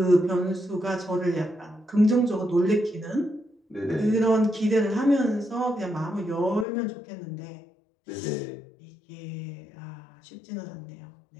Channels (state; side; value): drops out; right; at 6.7 s